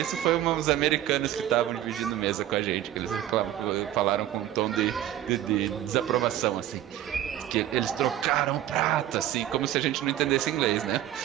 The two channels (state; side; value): quieter; left; 12.4 dB